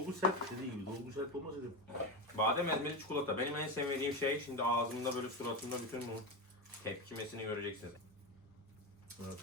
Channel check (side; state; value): both; normal; correlation 0.16